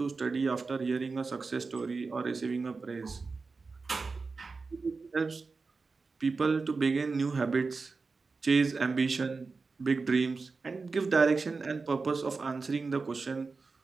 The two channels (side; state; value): left; quieter; 4.3 dB